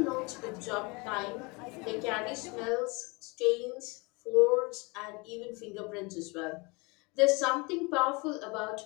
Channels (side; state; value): right; quieter; 27.4 dB